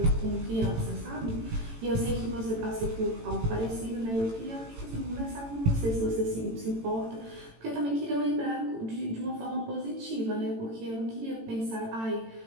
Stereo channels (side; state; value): left; late; 18 ms